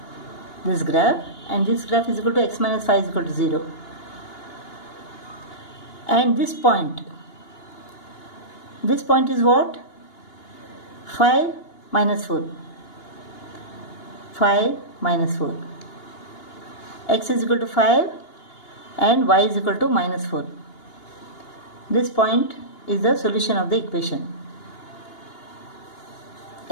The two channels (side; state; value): right; late; 2.8 ms